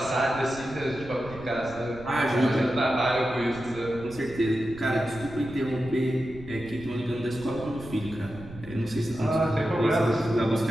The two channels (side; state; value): right; noise; rumble, 16 dB below the sound